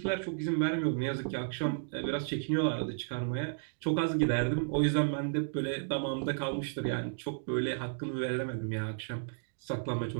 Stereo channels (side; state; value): left; silent; digital silence